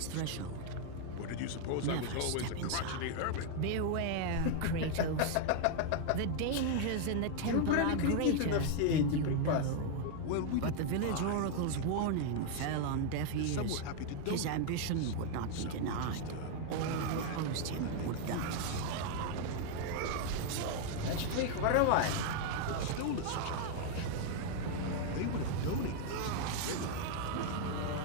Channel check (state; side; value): different; both; correlation 0.00